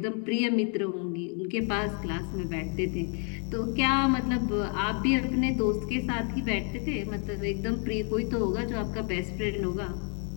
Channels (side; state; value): right; quieter; 39.9 dB